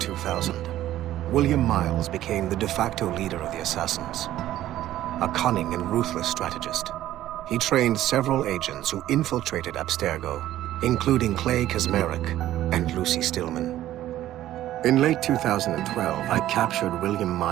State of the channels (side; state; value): left; quieter; 13.6 dB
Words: William Miles became the de facto leader of the Assassins. A cunning and ruthless strategist, he trained several agents who infiltrated Abstergo, including Clay Kazmarek and Lucy Stillman. In late 2012, I captured William